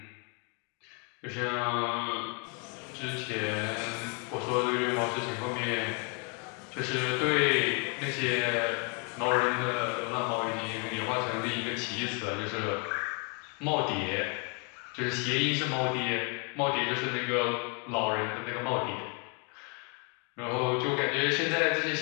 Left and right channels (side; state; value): right; quieter; 34.5 dB